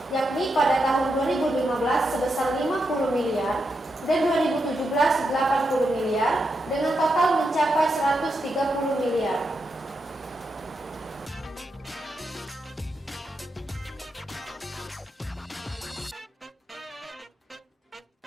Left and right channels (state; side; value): normal; both; correlation 0.84